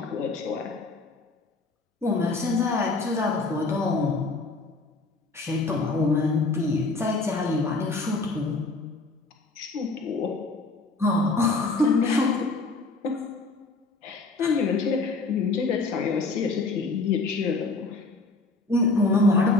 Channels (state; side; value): quieter; right; 3.4 dB